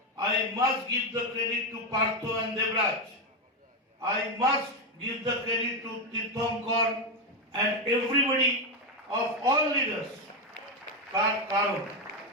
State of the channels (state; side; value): normal; both; correlation 0.08